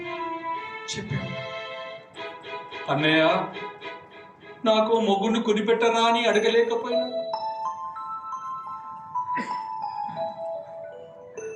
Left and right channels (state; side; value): identical; both; correlation 1.00